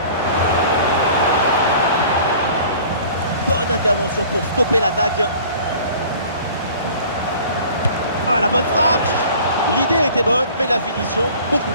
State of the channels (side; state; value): both; inverted; correlation -0.47